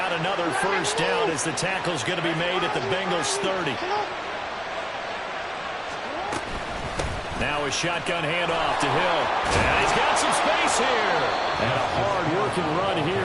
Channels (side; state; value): both; identical; correlation 1.00